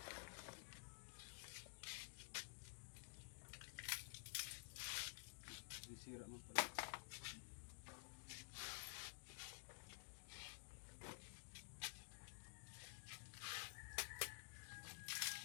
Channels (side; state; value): right; silent; digital silence